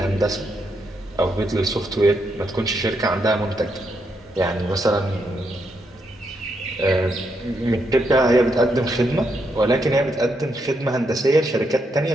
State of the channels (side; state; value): both; normal; correlation 0.79